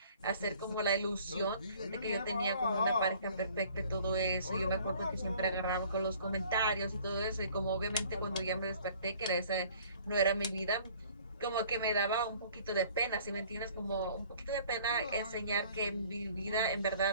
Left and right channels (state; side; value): inverted; both; correlation -0.54